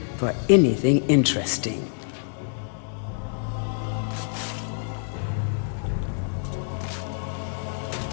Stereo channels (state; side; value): silent; right; digital silence